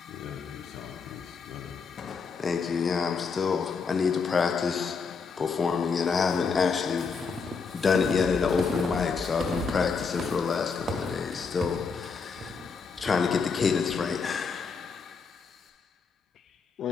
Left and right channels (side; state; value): right; quieter; 5.2 dB